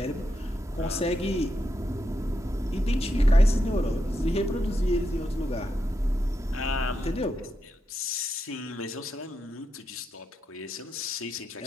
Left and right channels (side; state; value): both; normal; correlation 0.84